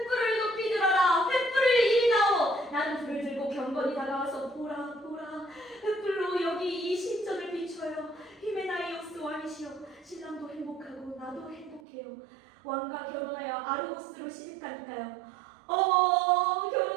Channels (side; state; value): left; drops out; at 11.8 s